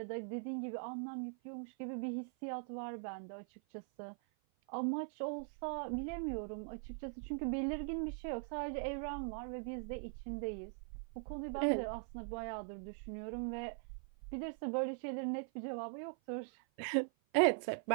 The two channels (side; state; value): left; silent; 50 dB below the other